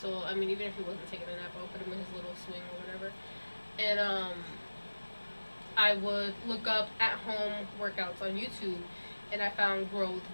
I mean, even if he wasn't taking a nap, I would put him in his little swing or whatever. And I would look up at-home workouts on YouTube, and I found Grow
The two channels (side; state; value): both; inverted; correlation -1.00